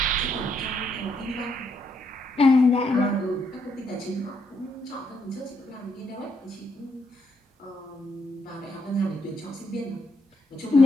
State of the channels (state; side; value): normal; both; correlation 0.76